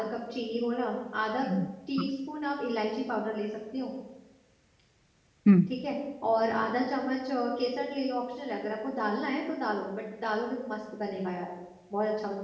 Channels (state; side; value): identical; both; correlation 1.00